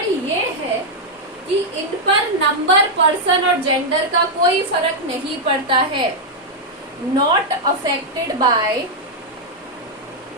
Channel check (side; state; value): both; normal; correlation -0.02